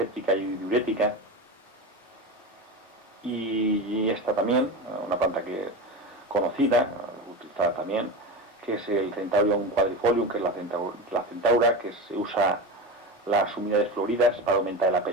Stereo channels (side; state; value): both; normal; correlation 0.23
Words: y diurética. Y esta también, una planta que conocida, utilizada también, que es el Centaurium quadrifolium, que es la centaura, que se usa las humedades floridas para aumentar el